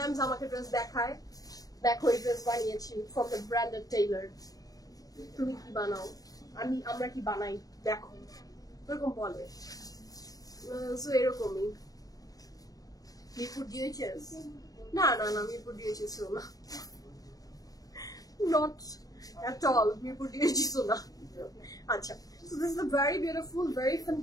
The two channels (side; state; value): right; late; 0.18 ms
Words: আমাকে ড্রেস দেখায়, দেখো এই ড্রেস বানিয়েছি ফ্রম দ্য ব্র্যান্ডেড টেইলার, তুমি কি বানাও, আমরা কি বানাই দেখো, এরকম বলে। সো এরকমই। মিরপুর ডিএইচএস না না না, মিরপুর ডিএইচএস না, not at all, Mirpur DHS না। আচ্ছা, so this is a very beautiful, very